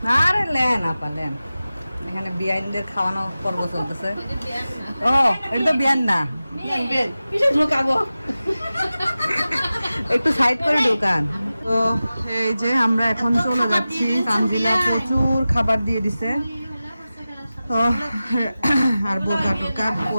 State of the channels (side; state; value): both; inverted; correlation -0.95